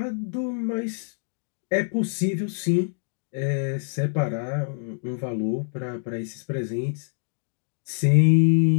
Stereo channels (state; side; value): silent; right; digital silence